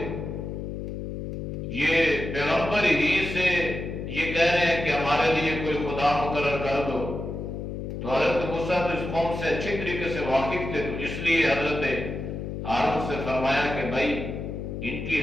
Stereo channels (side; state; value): left; noise; hum, 6 dB below the sound